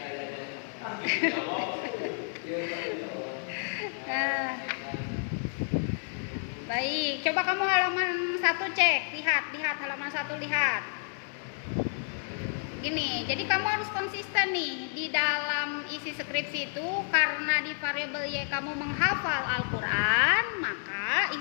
Baik, coba kamu halaman 1 cek, lihat halaman 1, lihat. Gini, jadi kamu harus konsisten nih di dalam isi skripsi itu, karena di variabel Y kamu menghafal Al-Quran, maka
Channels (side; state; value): right; silent; 58 dB below the other